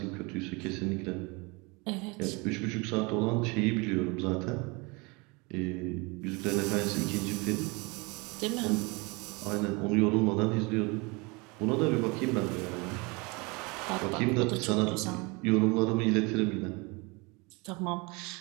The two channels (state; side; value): quieter; left; 27.5 dB